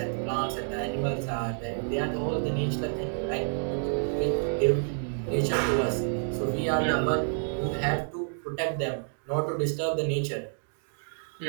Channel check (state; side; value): silent; left; digital silence